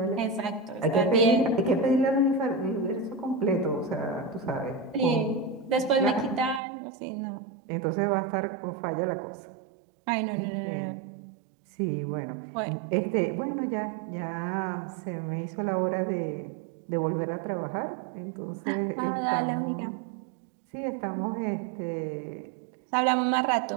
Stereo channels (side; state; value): left; drops out; at 6.6 s